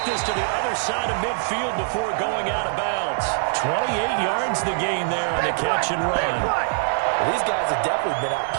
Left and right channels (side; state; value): left; silent; digital silence